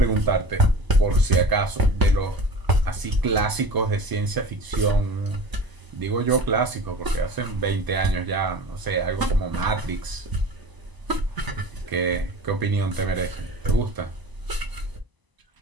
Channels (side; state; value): left; late; 1.0 ms